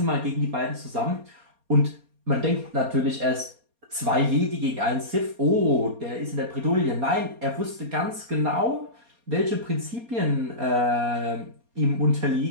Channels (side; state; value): left; late; 4.2 ms